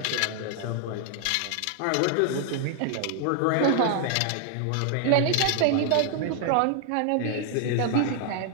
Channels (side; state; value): both; different; correlation 0.00